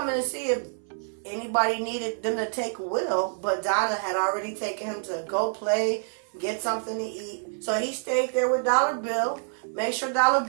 to see if anybody needed them to take Will, but Donna had already taken him to go play, get something to eat. So he stayed there with Dollar Bill, make sure Dollar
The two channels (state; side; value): silent; left; 59 dB below the other